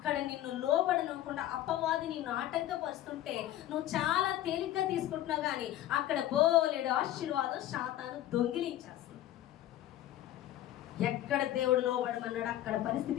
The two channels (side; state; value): right; quieter; 13.3 dB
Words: నిన్ను లోబడనివ్వకుండా అపవాది నిన్ను ఆటంకపరుస్తుంటే నువ్వు చాలా తేలిగ్గా తీసుకుంటున్నావు, కానీ అక్కడ బోలెడు ఆశీర్వాదం శాతాను దొంగిలించేస్తుంది. ఎక్కడ దేవుడు లోబడమన్నాడు అక్కడ